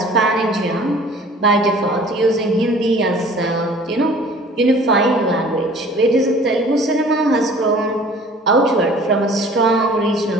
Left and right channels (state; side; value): normal; both; correlation 0.49